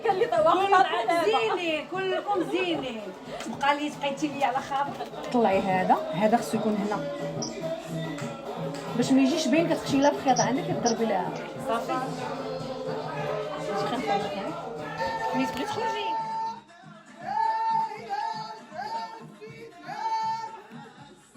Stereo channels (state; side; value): identical; both; correlation 1.00